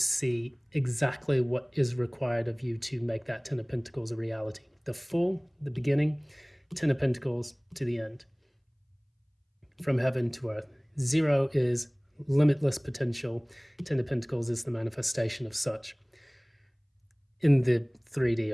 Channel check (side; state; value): both; identical; correlation 1.00